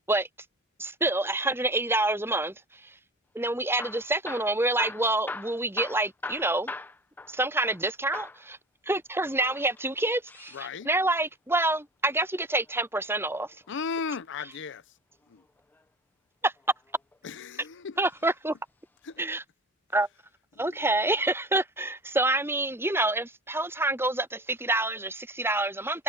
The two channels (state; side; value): normal; both; correlation 0.35